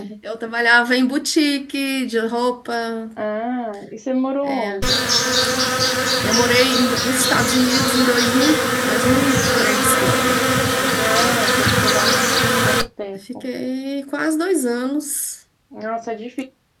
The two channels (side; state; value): both; identical; correlation 1.00